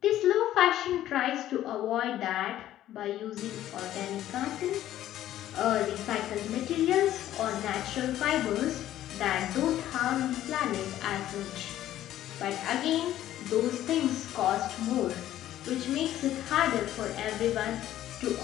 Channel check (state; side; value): quieter; right; 12.9 dB